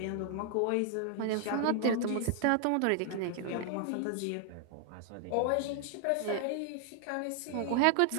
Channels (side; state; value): both; different; correlation 0.00